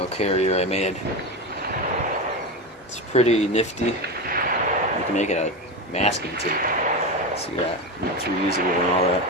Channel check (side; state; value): both; normal; correlation 0.19